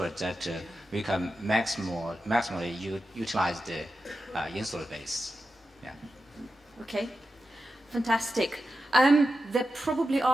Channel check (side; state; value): both; normal; correlation 0.90